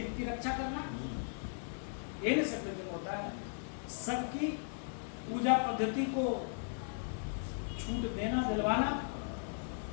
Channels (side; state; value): right; silent; digital silence